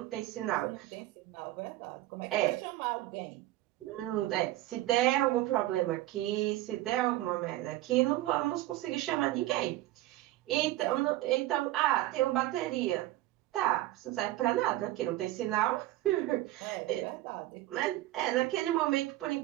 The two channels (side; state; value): left; quieter; 16.2 dB